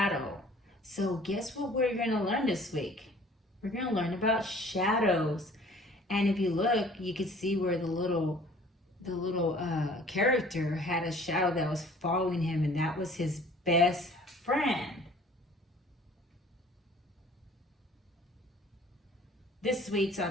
So guess what we're going to learn this week? We're going to learn about shadows. And if you look, you can see where the little character had a shadow that was following him, and that was his best friend. This week's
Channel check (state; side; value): normal; both; correlation 0.51